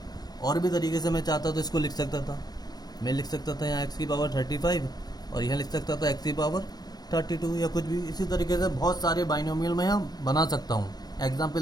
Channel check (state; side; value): late; right; 0.19 ms